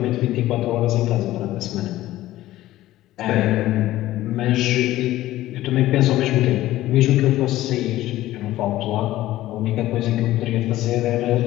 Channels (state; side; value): quieter; right; 15.4 dB